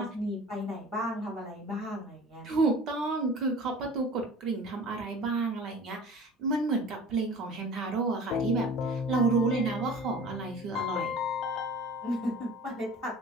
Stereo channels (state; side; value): normal; both; correlation 0.42